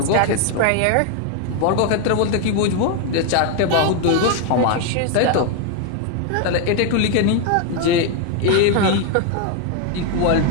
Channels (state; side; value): different; both; correlation 0.01